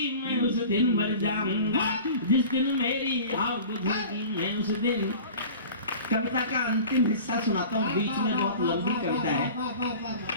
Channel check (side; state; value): both; inverted; correlation -0.40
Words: मैं उस दिन मर जाऊंगा, जिस दिन मेरी आग बुझेगी मैं उस दिन। कविता का अंतिम हिस्सा सुनाता हूँ, बीच में बहुत लंबी कविता है,